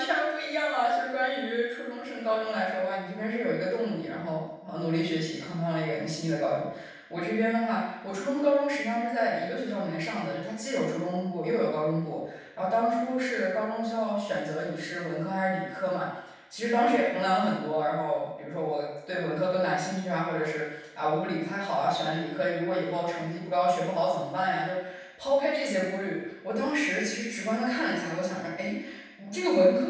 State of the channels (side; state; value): both; identical; correlation 1.00